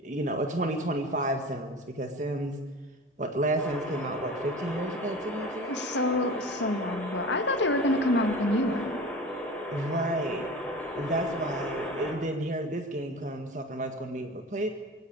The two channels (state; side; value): normal; both; correlation 0.35